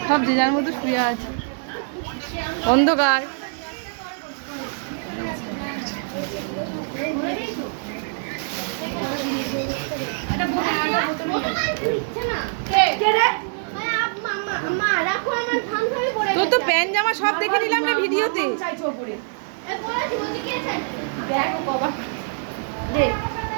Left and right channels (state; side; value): silent; left; 63 dB below the other